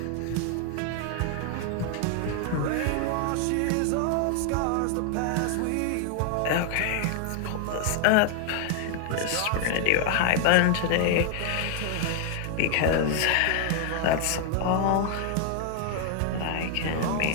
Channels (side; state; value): both; different; correlation 0.00